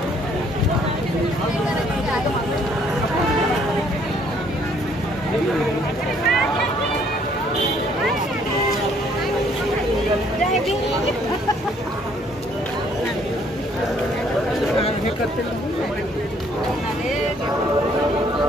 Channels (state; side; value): normal; both; correlation 0.64